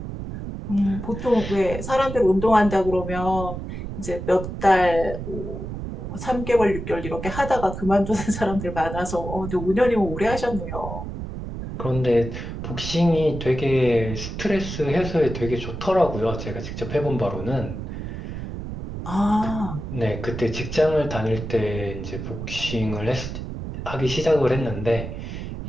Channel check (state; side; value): noise; right; rumble, 7 dB below the sound